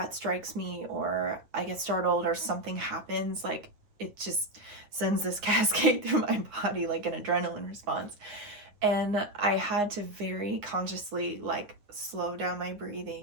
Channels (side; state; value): left; late; 9.5 ms